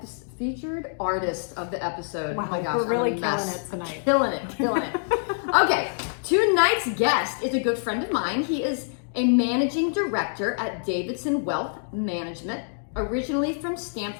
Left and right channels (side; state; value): right; silent; digital silence